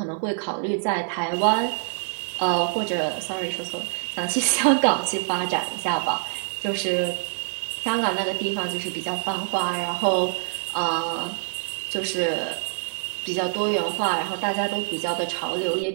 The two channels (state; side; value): silent; left; 62 dB below the other